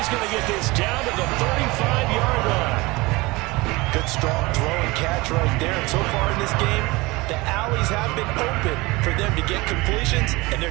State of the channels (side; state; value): left; quieter; 22.8 dB